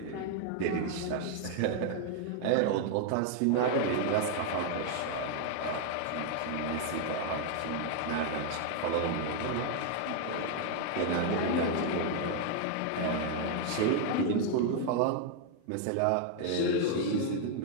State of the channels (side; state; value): both; different; correlation 0.00